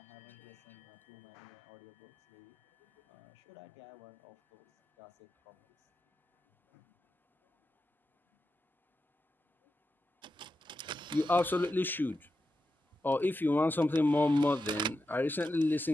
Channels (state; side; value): normal; both; correlation 0.89